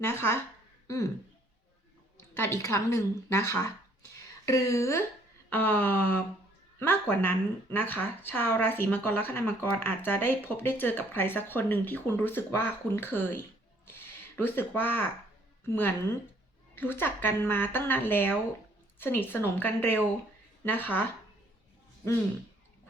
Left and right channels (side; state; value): both; normal; correlation 0.62